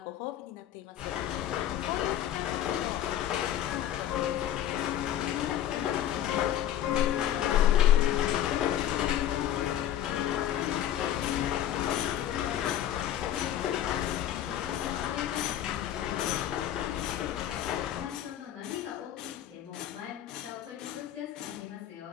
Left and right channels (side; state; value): right; quieter; 11.3 dB